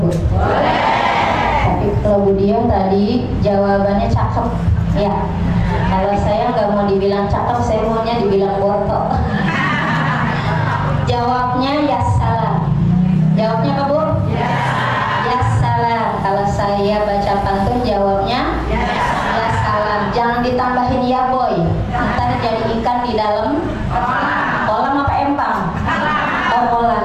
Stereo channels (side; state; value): both; identical; correlation 1.00